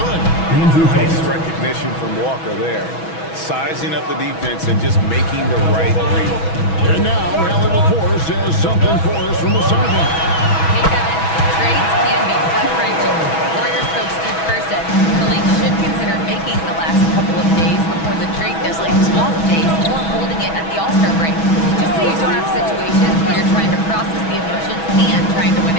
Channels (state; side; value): late; right; 6.2 ms